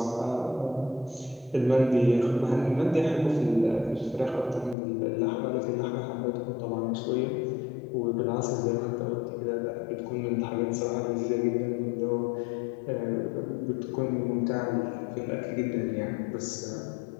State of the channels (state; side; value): drops out; right; at 4.8 s